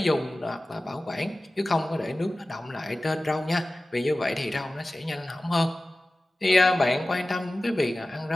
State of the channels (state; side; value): normal; both; correlation 0.96